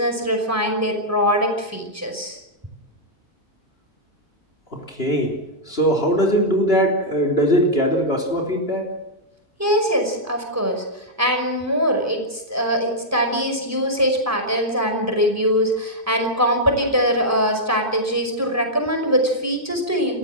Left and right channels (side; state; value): both; normal; correlation -0.08